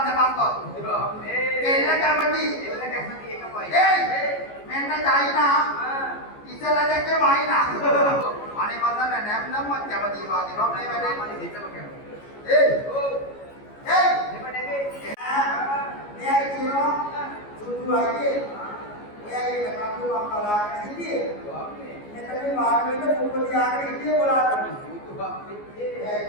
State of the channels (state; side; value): late; right; 14 ms